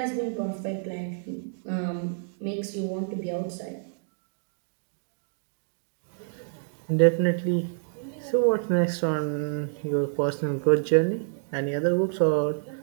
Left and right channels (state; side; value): silent; left; digital silence